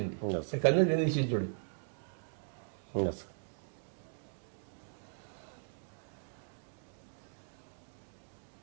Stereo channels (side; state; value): left; silent; digital silence